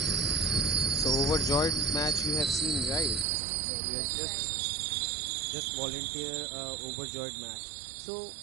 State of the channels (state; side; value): drops out; left; at 3.2 s